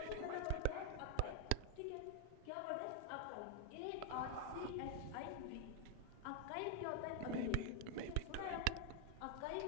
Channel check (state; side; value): different; both; correlation 0.00